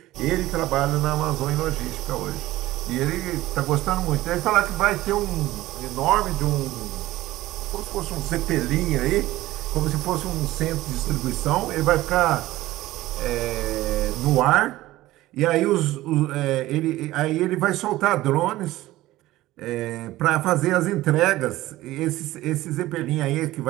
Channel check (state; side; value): quieter; left; 16.7 dB